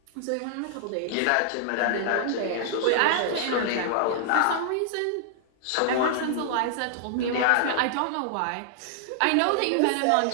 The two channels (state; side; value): different; both; correlation -0.01